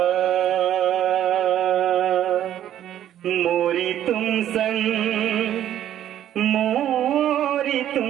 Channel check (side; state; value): left; quieter; 11.4 dB